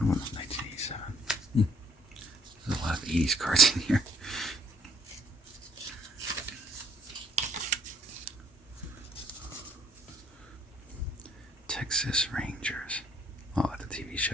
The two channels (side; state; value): both; normal; correlation 0.63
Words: one was 1987. There's a lot of 80s cards in here. Texas Rangers. Oh, the TV